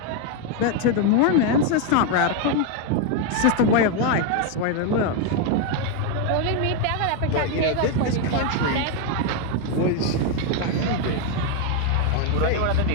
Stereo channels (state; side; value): different; both; correlation 0.01